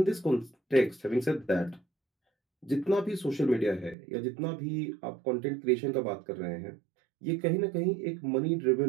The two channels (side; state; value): left; drops out; at 4.0 s